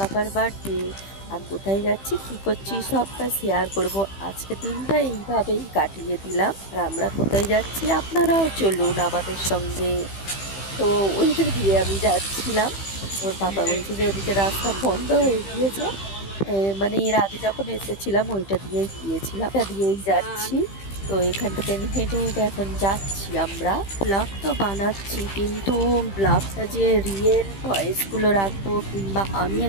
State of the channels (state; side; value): late; right; 15 ms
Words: বার্থডে। আর কোথায় যাচ্ছি, কি করছি, সবটা শেয়ার করব। আজকে দিনটা এইভাবেই কাটিয়ে দিলাম। আর আমরা কোথায় যাচ্ছি, আপনারাও চলুন আমাদের সঙ্গে। তো ওইটা দিয়ে আমি যাচ্ছিলাম। ওর পাপা বলছে যে ওদিকে রাস্তা বন্ধ হয়ে গিয়েছে। মানে এর আগে যখন এসেছিলাম ওইটা দিয়েই গিয়েছিলাম, এটা দিয়েই যাচ্ছি। তো এখান থেকে হেঁটে হেঁটে এখন যাচ্ছি আমরা। ব্লগ তো বানাচ্ছি, কিন্তু ব্লগটা যে রিয়েল ভয়েসগুলো রাখবো কিংবা আমি